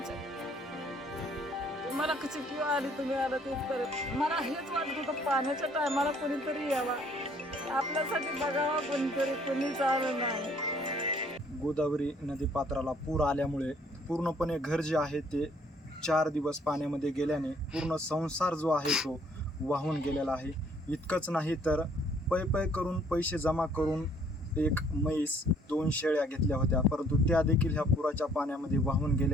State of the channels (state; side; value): normal; both; correlation 0.62